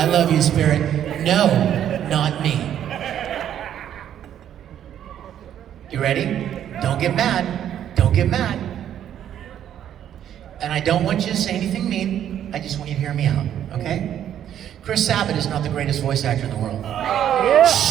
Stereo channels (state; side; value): quieter; left; 10.3 dB